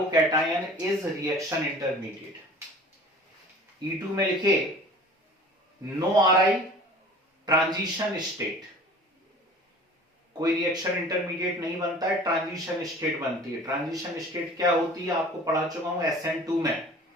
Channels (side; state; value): both; normal; correlation 0.44